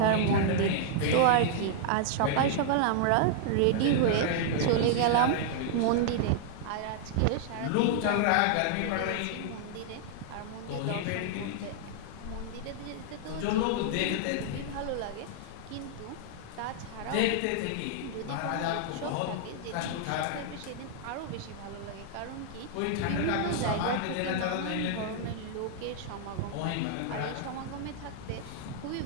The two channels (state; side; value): different; both; correlation -0.01